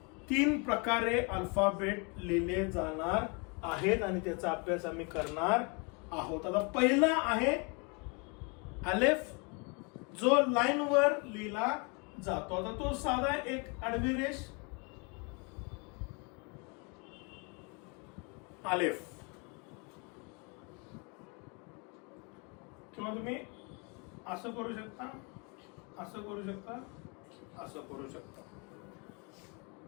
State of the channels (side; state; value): right; quieter; 32.7 dB